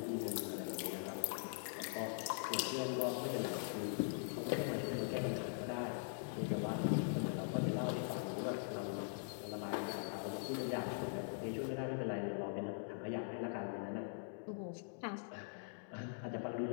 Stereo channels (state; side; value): silent; right; digital silence